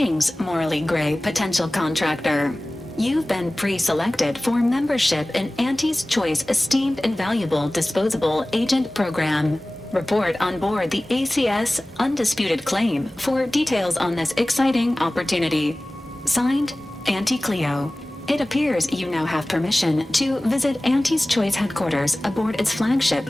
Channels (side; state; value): both; normal; correlation 0.98